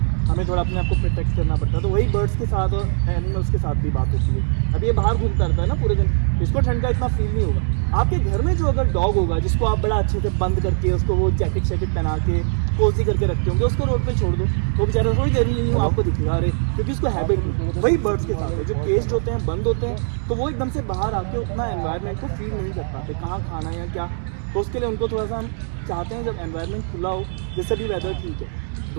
हमें थोड़ा अपने आप को प्रोटेक्ट करना पड़ता है। तो वही बर्ड्स के साथ और एनिमल्स के साथ भी बात होती है। अब ये बाहर घूमता रहता है ना पूरे दिन, इसको ठंड का इतना फील नहीं होगा। आपके घर में जो अगर डॉग होगा जिसको आप बड़ा अच्छे से बंद करके, उसको वो जैकेट पहना के कोजी करके रखते होंगे, उसको रोड पे छोड़ दो, वो बेचारा थोड़ी देर नहीं हो आपको दिखेगा, अरे क्योंकि उसको हैबिट नहीं। वही बर्ड्स के साथ है, जो केस्ड होते हैं, बंद होते हैं, तो वो एकदम से बाहर आके उतना एनवायरनमेंट को फील नहीं कर पाते, कहाँ खाना है या क्या। तो उसके लिए उनको थोड़ा सा हम चाहते हैं जब एनवायरनमेंट खुला हो, जैसे भी वेदर ठीक है,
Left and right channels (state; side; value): silent; left; digital silence